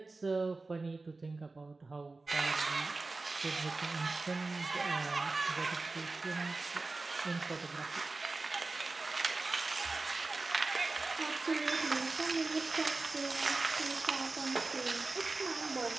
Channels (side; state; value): left; quieter; 3.5 dB